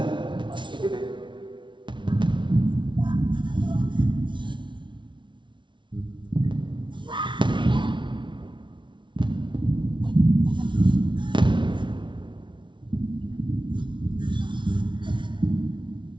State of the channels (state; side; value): late; left; 0.24 ms